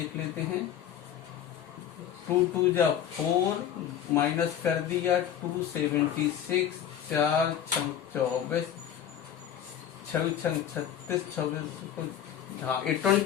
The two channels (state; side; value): quieter; right; 9.6 dB